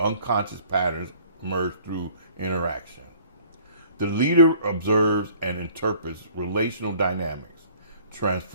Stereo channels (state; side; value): inverted; both; correlation -0.53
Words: unconscious patterns emerge through interaction. The leader observes and interprets relational dynamics,